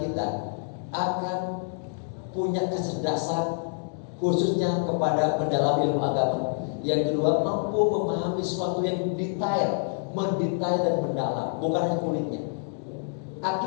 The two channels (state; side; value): silent; right; 60 dB below the other